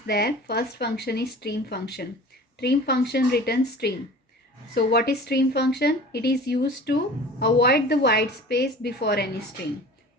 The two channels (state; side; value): normal; both; correlation 0.41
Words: there. First function is stream function. Stream function returns string. So what is stream function? It is used to avoid the white space before any string.